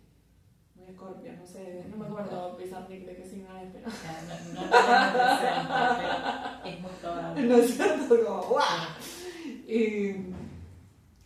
Muy Escorpio, no sé, no me acuerdo Pizarnik de qué signo es, pero... No lo tengo presente, pero es muy probable. ¿No es cierto? Como, ¡guau!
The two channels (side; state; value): both; identical; correlation 1.00